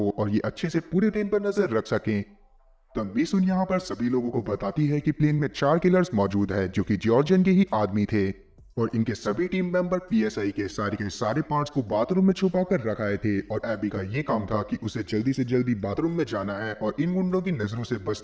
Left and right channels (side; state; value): both; identical; correlation 1.00